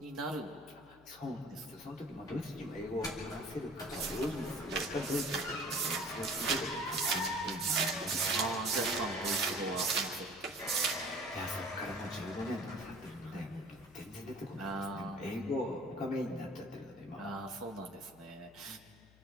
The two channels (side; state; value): left; noise; hum, 25 dB below the sound